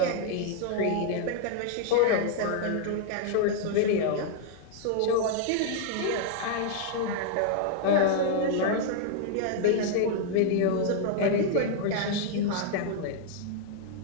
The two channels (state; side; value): different; both; correlation -0.01